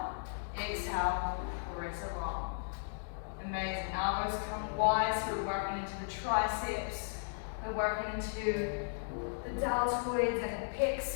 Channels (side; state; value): right; silent; digital silence